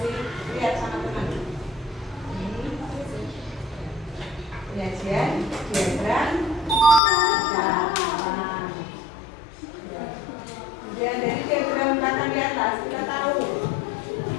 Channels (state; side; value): drops out; right; at 7.0 s